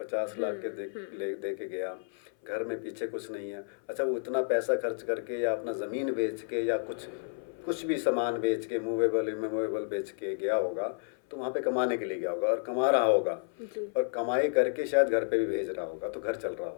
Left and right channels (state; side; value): silent; right; 57 dB below the other